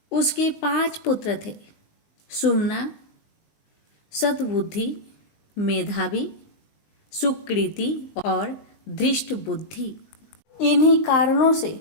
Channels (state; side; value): late; right; 20 ms